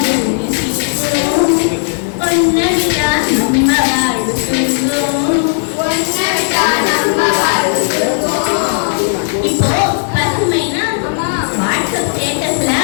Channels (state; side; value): silent; right; digital silence